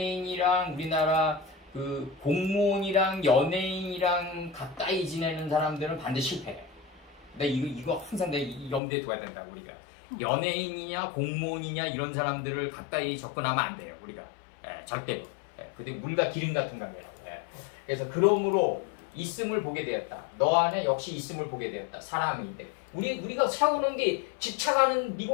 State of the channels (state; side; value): drops out; right; at 8.8 s